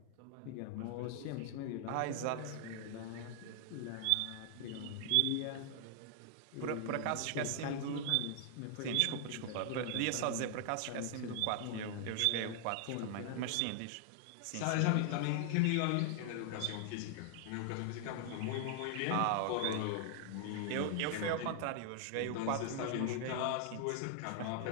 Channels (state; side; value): different; both; correlation 0.00